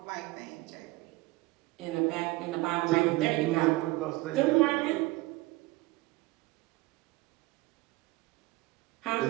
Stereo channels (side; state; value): left; quieter; 20.9 dB